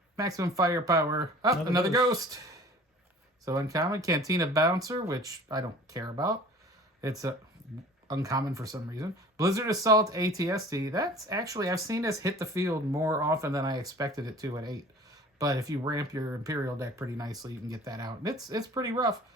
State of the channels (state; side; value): normal; both; correlation 0.46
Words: Maximum Firepower. Oh, another Ghost. So uncommon, Cantina Bouncer, which I don't care about. It's uncommon for some reason. Blizzard Assault ATST. That's actually, I've seen this hit the field more often than I expected it to at 8. But if you ramp your Imperial deck pretty nicely, you can get that out. And it's pretty rough.